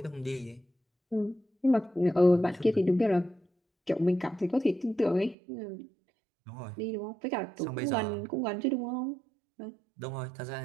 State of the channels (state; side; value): drops out; left; at 5.4 s